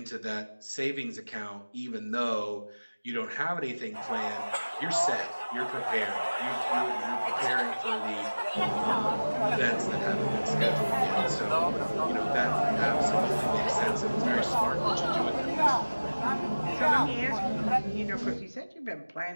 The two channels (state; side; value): inverted; both; correlation -1.00